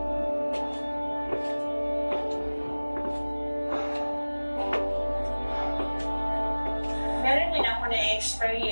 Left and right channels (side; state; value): both; inverted; correlation -1.00